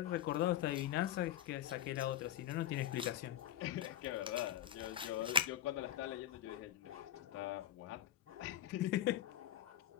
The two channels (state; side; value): quieter; right; 11.6 dB